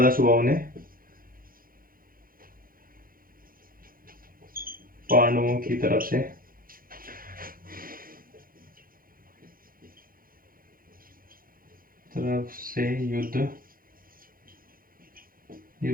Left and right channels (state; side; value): late; left; 0.42 ms